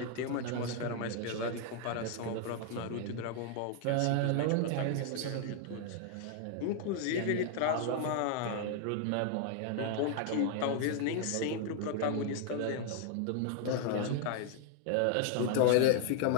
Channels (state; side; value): different; both; correlation 0.00